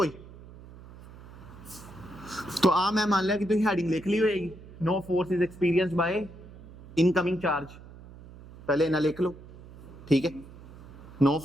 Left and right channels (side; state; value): right; noise; hum, 18 dB below the sound